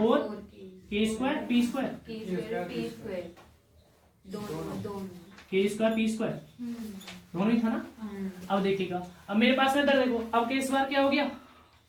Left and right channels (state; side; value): identical; both; correlation 1.00